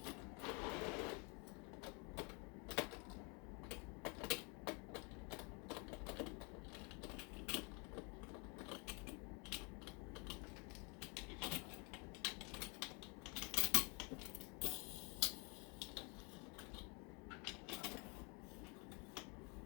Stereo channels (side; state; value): right; quieter; 33.1 dB